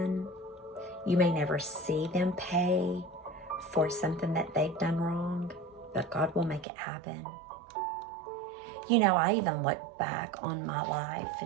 You may never see them pay for something that they've done wrong, but God will make it happen. You know, I even look back on my life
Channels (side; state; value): left; drops out; at 6.7 s